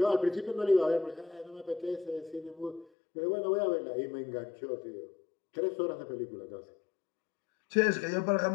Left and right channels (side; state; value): right; drops out; at 2.9 s